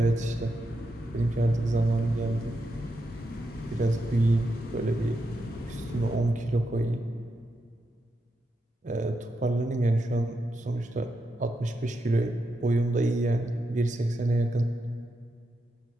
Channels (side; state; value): both; normal; correlation 0.85